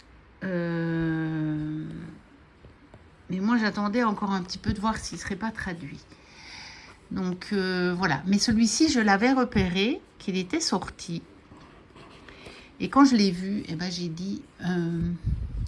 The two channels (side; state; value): both; identical; correlation 1.00